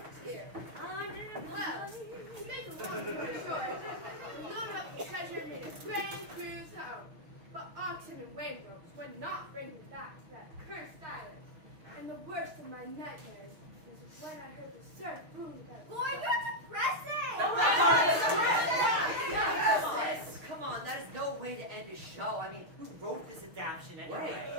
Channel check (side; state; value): left; late; 6.4 ms